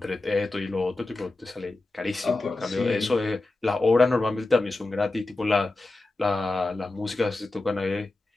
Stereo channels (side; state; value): right; quieter; 3.0 dB